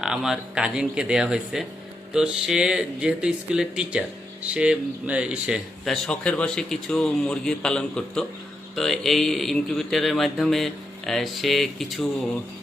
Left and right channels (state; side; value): normal; both; correlation 0.83